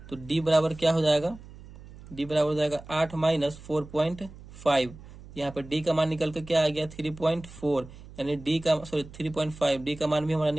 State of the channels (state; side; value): noise; right; hum, 18 dB below the sound